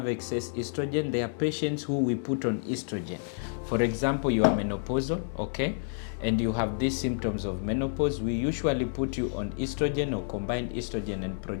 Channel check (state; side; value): silent; right; 58 dB below the other